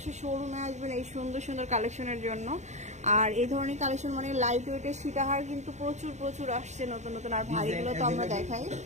শোরুমে আসবেন এই সুন্দর সুন্দর কালেকশনের জন্য। আর এই ধরনের কালেকশন মানে লাইট ওয়েটের সীতাহার কিন্তু প্রচুর প্রচুর আসছে নতুন নতুন। আর ভারীগুলো তো আমরা দেখাই,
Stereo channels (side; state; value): left; late; 0.34 ms